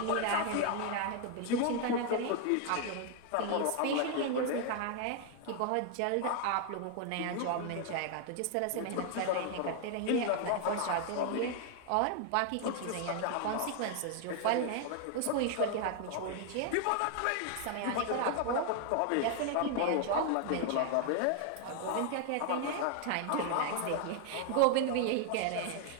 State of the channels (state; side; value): different; both; correlation 0.00